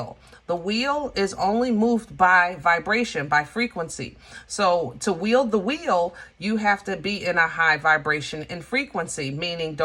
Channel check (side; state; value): both; identical; correlation 1.00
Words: The wheel is only moved by vibration, by frequency. So to wield the wheel, you have to be in a high vibration and frequency, meaning